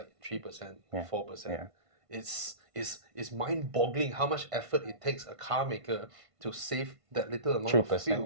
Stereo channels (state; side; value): late; left; 1.5 ms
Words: 3%, 4%. Yeah. It's mind-boggling how much effort it takes a car maker to save that little amount 3%. of